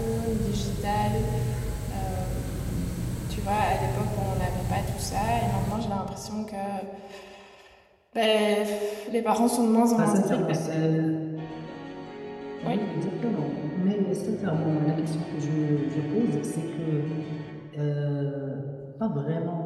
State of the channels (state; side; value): identical; both; correlation 1.00